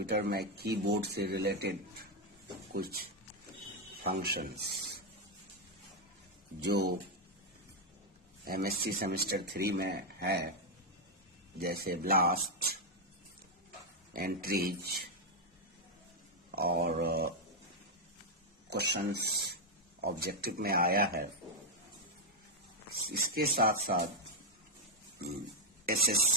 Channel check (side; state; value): both; normal; correlation 0.00